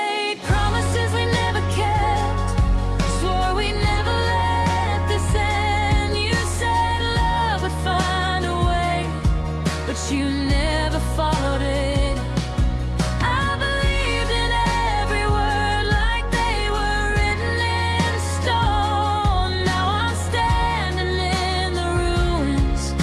promises we never kept, swore we never let this end. You said love would find a way, but you never followed it.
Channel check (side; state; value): both; identical; correlation 1.00